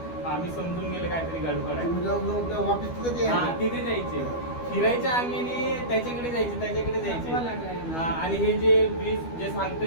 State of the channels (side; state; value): right; late; 12 ms